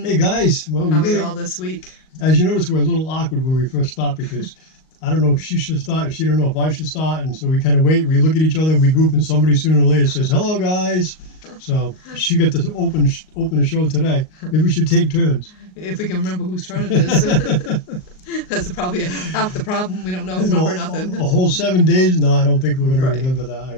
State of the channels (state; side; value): late; right; 38 ms